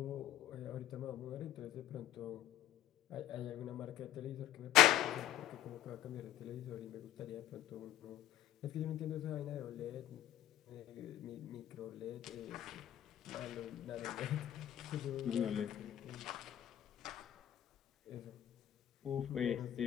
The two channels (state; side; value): quieter; right; 12.8 dB